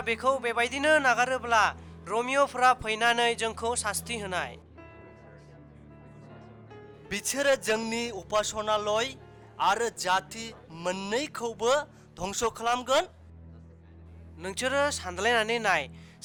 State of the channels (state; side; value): identical; both; correlation 1.00